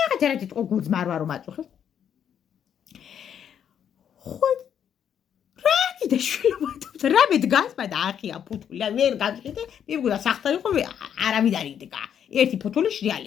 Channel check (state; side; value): quieter; right; 8.8 dB